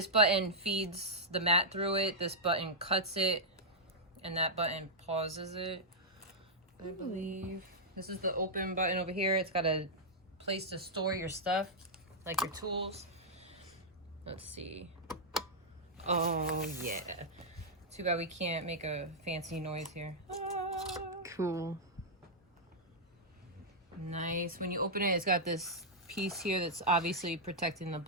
button feeds the mat through it. This button cuts it. And that button pauses it, I believe. This is the open button over here. It's got a place to store your stuff, like your tools. Let's see. Oh, yeah. Too bad we can't make a fancy noise here. Ah. Cool. Nice. When you open it, it's got this piece here that's obviously protecting the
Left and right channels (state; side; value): normal; both; correlation -0.07